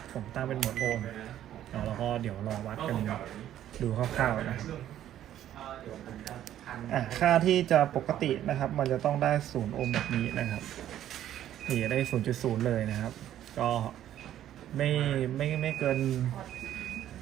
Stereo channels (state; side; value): quieter; left; 11.7 dB